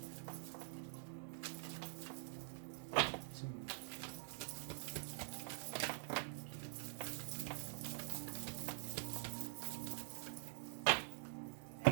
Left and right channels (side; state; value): left; silent; digital silence